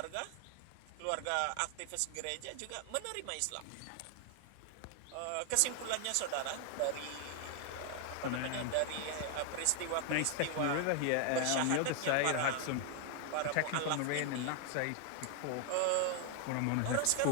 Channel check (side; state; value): both; different; correlation 0.00